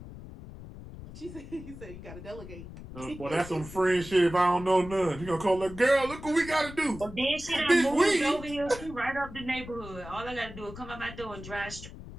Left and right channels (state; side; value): noise; left; rumble, 14 dB below the sound